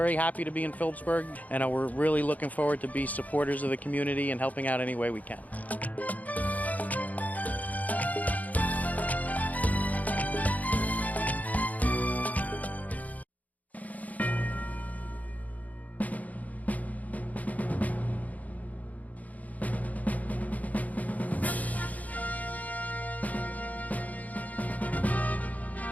happy to be in Phillipsburg, and we're really looking forward to be supporters of the community and helping out any way we can.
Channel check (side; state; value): right; late; 0.075 ms